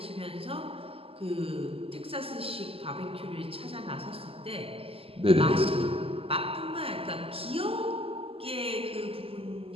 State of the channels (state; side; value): late; left; 0.27 ms